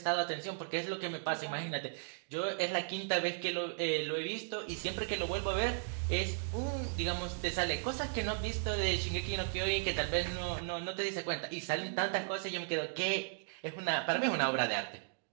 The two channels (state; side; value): silent; left; digital silence